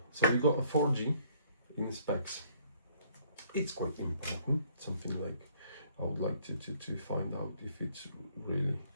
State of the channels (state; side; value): inverted; both; correlation -0.63